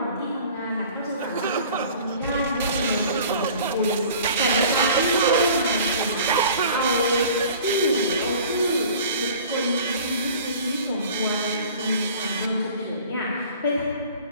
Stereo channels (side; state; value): both; inverted; correlation -0.46